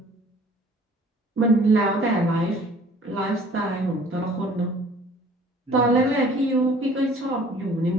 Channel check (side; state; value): both; normal; correlation 0.53